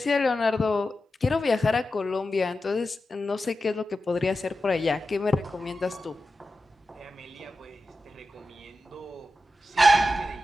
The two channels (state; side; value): normal; both; correlation 0.92